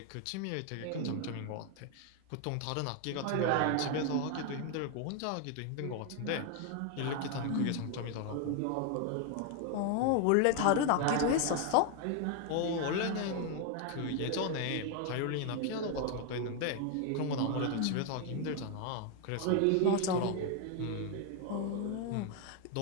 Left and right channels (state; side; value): different; both; correlation 0.01